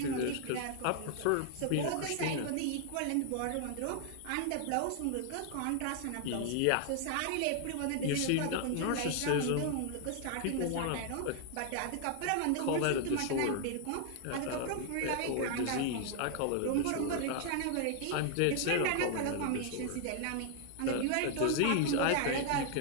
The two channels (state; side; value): different; both; correlation 0.00